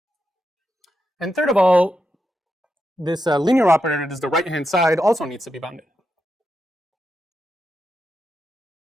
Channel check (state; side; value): normal; both; correlation 0.86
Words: And third of all, this linear operator that is the right-hand side also needs to be bounded.